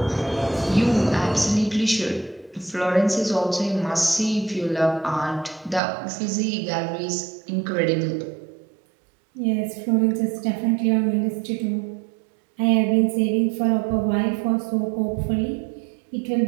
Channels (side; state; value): left; drops out; at 5.8 s